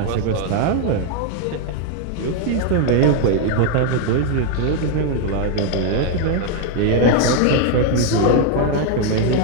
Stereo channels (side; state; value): both; different; correlation 0.00